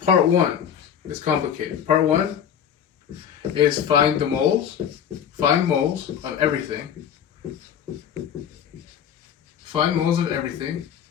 Part one is complicated. Part one is find moles of everything. Find moles of everything.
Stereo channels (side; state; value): right; quieter; 8.7 dB